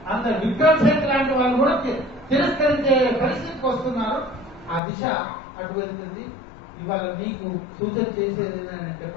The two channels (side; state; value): right; drops out; at 4.8 s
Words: అందరు విక్రమ్ సేత్ లాంటి వాళ్ళు కూడా తిరస్కరించే పరిస్థితికి వస్తున్నారు. ఆ దిశ అటు వెళ్తుంది. ఇవాళ మీకు సూచన చేసేది ఏంటంటే